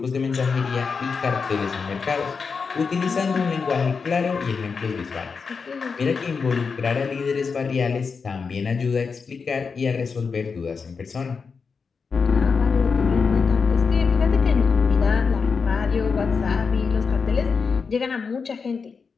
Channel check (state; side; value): quieter; right; 5.3 dB